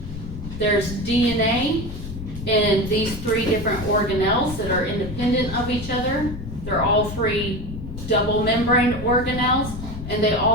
there's DNA in these three different organelles that are independent of each other. They're all three double membrane organelles, and they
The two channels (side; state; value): left; noise; rumble, 9 dB below the sound